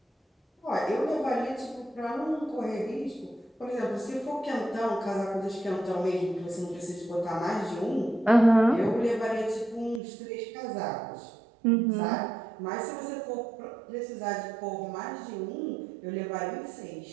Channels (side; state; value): left; drops out; at 10.0 s